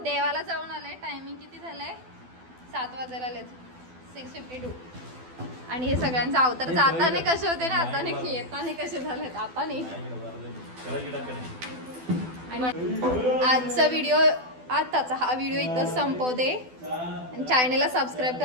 देवाला जाऊन आले. टायमिंग किती झालंय? 7 वाजायला आलेत. 6:52. आणि हे सगळ्यांचा अवतार जाताने कसे होते ना, आता नाही येताने कसे झालेत आता नाही. आणि आजचा व्हिडिओ, आताचा हा व्हिडिओ इथं संपवते. चॅनेलला सबस्क्राईब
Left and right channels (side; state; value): left; late; 12 ms